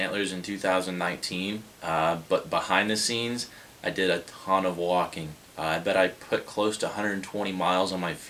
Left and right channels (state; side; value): identical; both; correlation 1.00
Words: in 2019, but behind the scenes, I did a ton of walking. I bet I put close to 120 miles on my